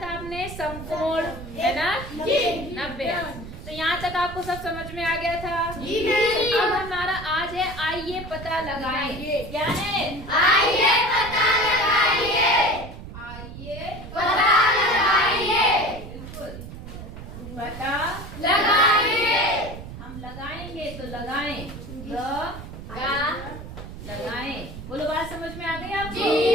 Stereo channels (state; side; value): noise; right; rumble, 12 dB below the sound